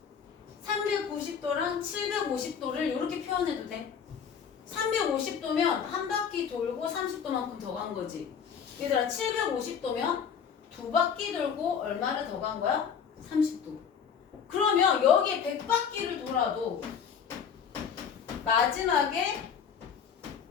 390도랑 750도를 이렇게 표현해도 돼. 350도면 한 바퀴 돌고 30도만큼 더 간 거지. 얘들아, 750도면 두 바퀴 돌고 얼마를 더 간 거야? 30도. 그러면 여기에 100바퀴를 돌아도 마지막에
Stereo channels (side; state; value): right; quieter; 7.2 dB